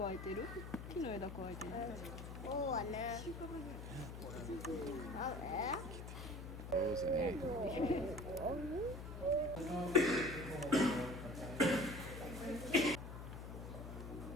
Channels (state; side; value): noise; left; hum, 9 dB below the sound